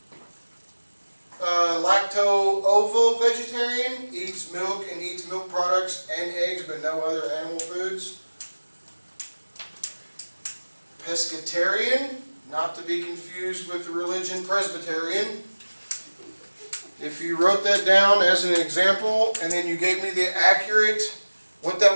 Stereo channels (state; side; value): inverted; both; correlation -1.00